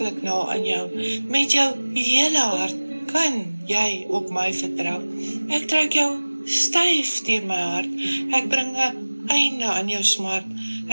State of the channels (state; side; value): inverted; both; correlation -1.00